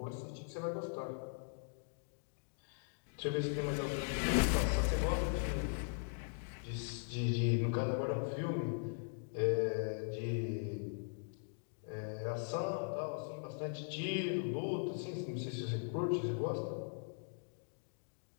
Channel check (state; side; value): silent; right; digital silence